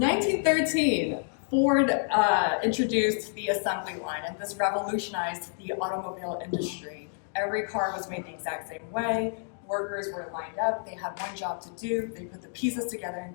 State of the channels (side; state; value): right; silent; digital silence